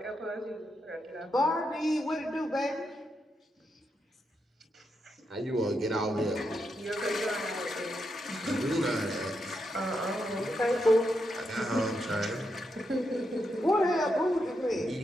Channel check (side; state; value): both; normal; correlation 0.83